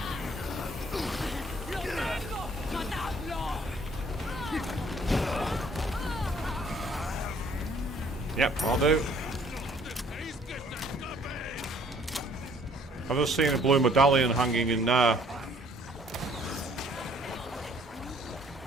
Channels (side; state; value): both; normal; correlation 0.59